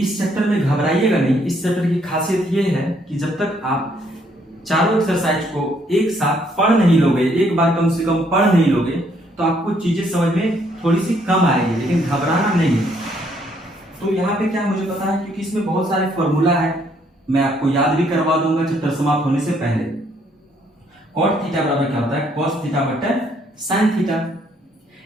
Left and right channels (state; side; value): normal; both; correlation 0.68